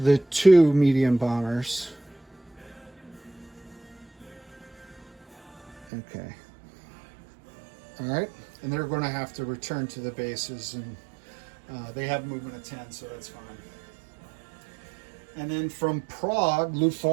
2 medium bombers. Okay. All right, and they're going to have to return to the bases, and they have movement of 10, so that's fine. And then from Prague,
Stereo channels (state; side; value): drops out; left; at 5.9 s